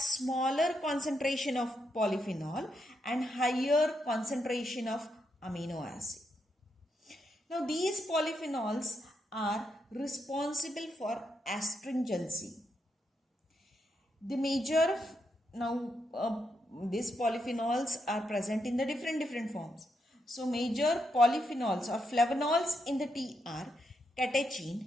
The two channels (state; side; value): normal; both; correlation 0.81